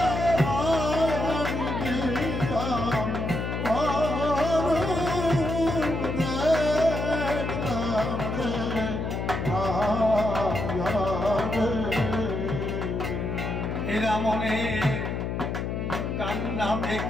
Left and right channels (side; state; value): left; noise; hum, 2 dB below the sound